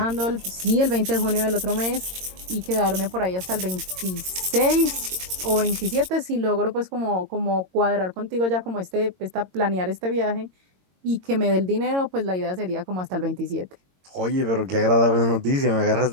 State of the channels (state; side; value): late; left; 22 ms